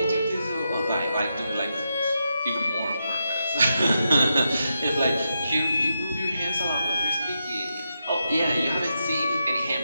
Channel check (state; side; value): inverted; both; correlation -0.85